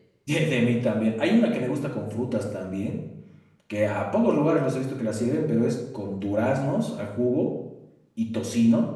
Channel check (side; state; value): both; identical; correlation 1.00